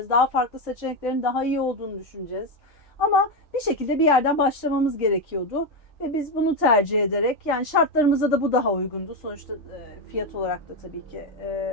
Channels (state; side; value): normal; both; correlation 0.09